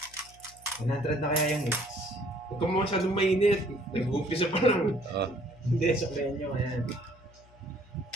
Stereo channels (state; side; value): noise; left; hum, 26 dB below the sound